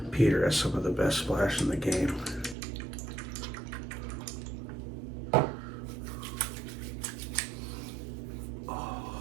Peter has some of the best splash in the game.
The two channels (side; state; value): left; drops out; at 2.6 s